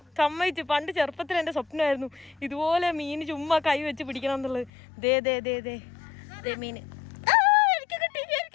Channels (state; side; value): drops out; right; at 4.7 s